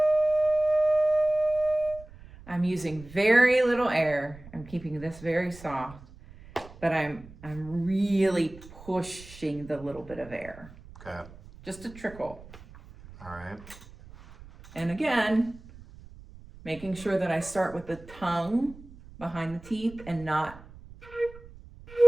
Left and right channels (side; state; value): right; noise; rumble, 19 dB below the sound